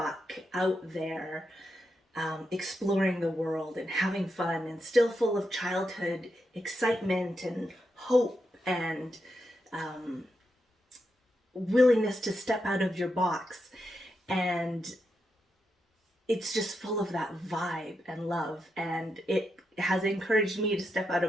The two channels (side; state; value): both; normal; correlation 0.85